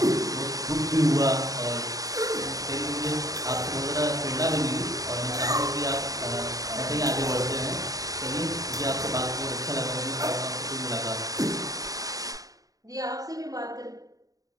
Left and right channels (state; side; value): late; left; 0.17 ms